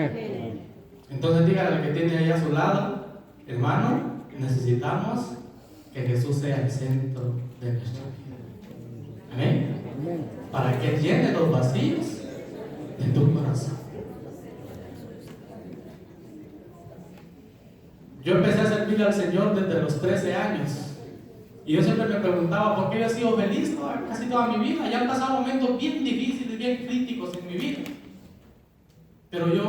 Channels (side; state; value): both; identical; correlation 1.00